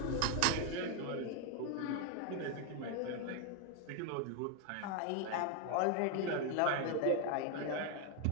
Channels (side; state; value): both; different; correlation 0.01